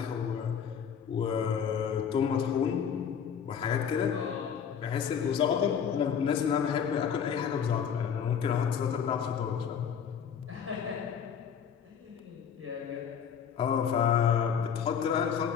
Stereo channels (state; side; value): quieter; right; 7.6 dB